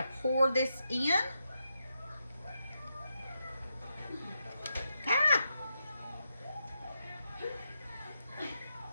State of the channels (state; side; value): inverted; both; correlation -0.84